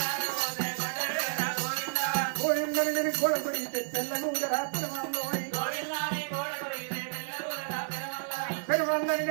పోయిందని నేను గోడ కొడితే తెల్లగూడ రాత్రమంలో పెరుమందని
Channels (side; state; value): left; silent; 57 dB below the other